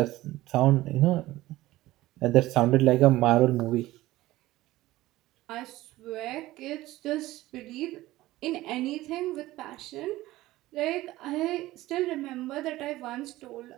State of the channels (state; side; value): quieter; left; 17.1 dB